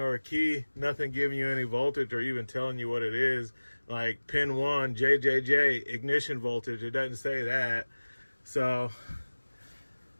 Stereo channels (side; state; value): both; inverted; correlation -1.00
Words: or a key, nothing giving you any voltage or even telling you what it is, like pin 1 JJJ ignition voltage, it doesn't say that. So